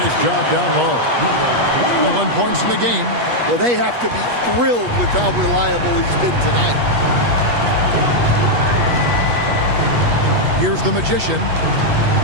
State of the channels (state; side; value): late; left; 8.3 ms